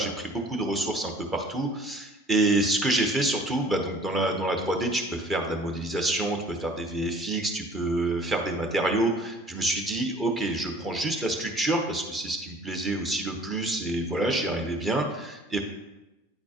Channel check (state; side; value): normal; both; correlation 0.51